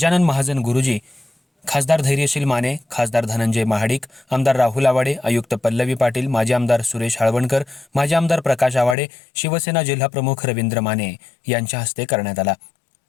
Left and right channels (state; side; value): drops out; right; at 9.0 s